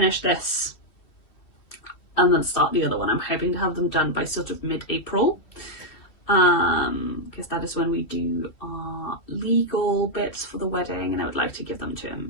this and then start the other one. I'm hoping to have them done by sort of mid-April, because that is when we do our legal bits for the wedding, and I would like to give them to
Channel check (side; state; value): right; late; 2.8 ms